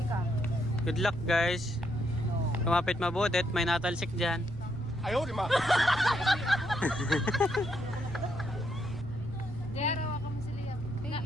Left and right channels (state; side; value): noise; right; rumble, 14 dB below the sound